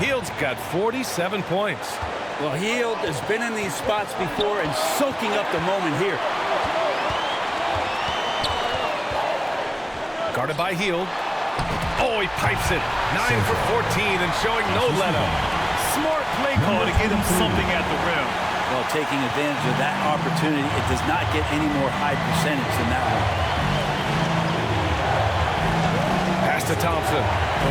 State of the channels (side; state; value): both; identical; correlation 1.00